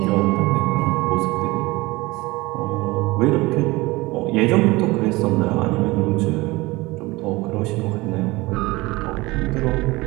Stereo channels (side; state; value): left; quieter; 21.7 dB